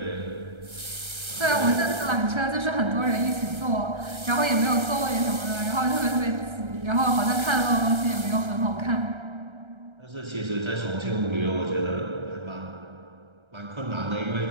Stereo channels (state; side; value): late; left; 1.3 ms